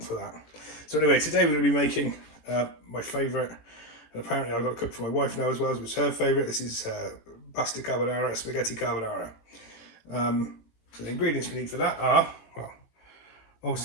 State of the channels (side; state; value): right; late; 18 ms